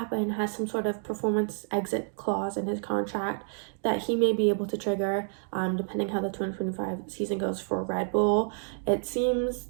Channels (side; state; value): left; silent; digital silence